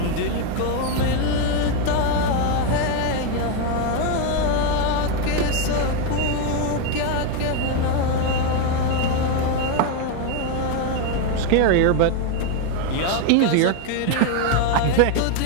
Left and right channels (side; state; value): both; different; correlation 0.02